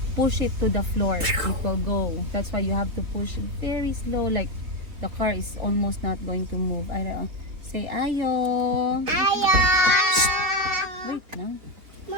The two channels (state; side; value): late; left; 3.8 ms